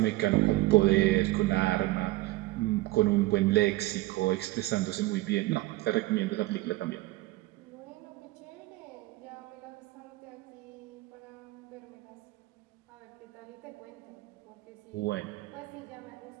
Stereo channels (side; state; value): left; quieter; 18.9 dB